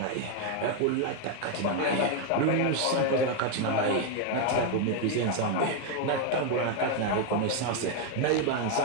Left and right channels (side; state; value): both; different; correlation 0.01